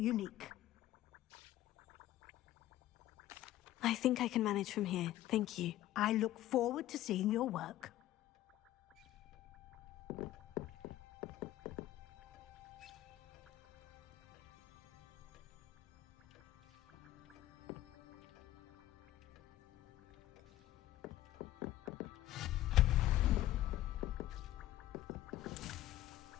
I think I can manage from here. Thank you. I look forward to seeing your work.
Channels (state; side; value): quieter; right; 14.3 dB